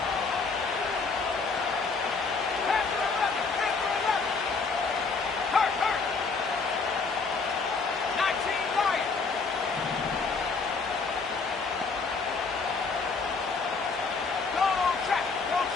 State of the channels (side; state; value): right; quieter; 4.5 dB